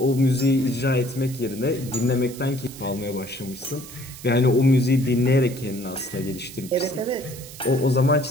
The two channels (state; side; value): noise; right; hiss, 16 dB below the sound